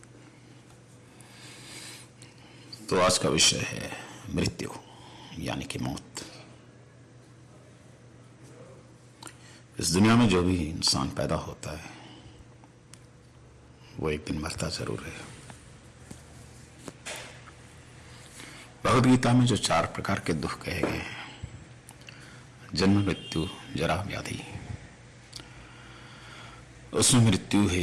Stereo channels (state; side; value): identical; both; correlation 1.00